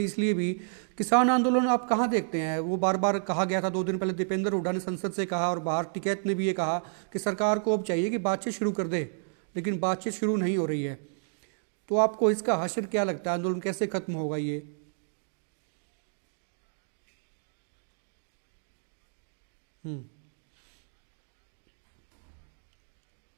इसलिए भी, किसान आंदोलन आप कहाँ देखते हैं? वो बार बार कहा गया था, 2 दिन पहले दीपेंद्र हुड्डा ने संसद से कहा और बाहर टिकैत ने भी ये कहा कि सरकार को अब चाहिए कि बातचीत शुरू कर दे, लेकिन बातचीत शुरू नहीं हो रही है। तो आपको इसका हश्र क्या लगता है? आंदोलन कैसे खत्म होगा ये? इसका हर्ष मैं बताना चाहता हूं जो भाई मेरी आवाज सुन रहे हैं, और मैं भारत सरकार को भी सचेत और आगाह करना चाहता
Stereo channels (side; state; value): left; silent; digital silence